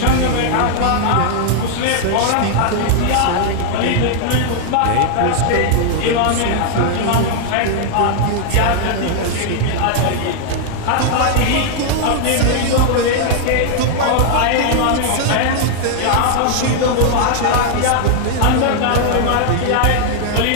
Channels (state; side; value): different; both; correlation -0.01